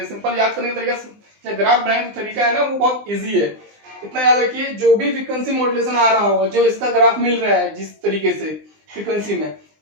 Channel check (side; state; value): left; late; 20 ms